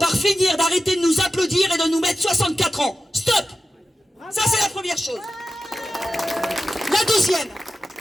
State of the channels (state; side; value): normal; both; correlation 0.92